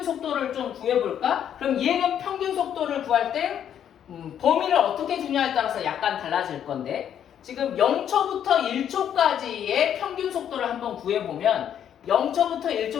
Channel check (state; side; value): quieter; right; 9.5 dB